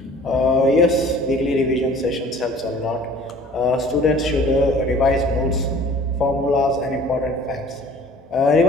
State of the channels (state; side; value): normal; both; correlation 0.49